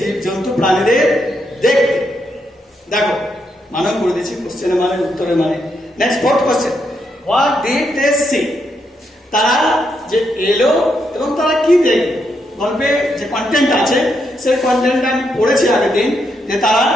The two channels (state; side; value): normal; both; correlation 0.79